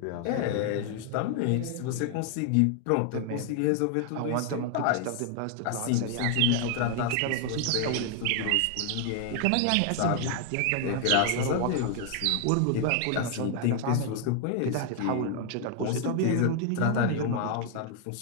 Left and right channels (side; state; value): both; different; correlation 0.00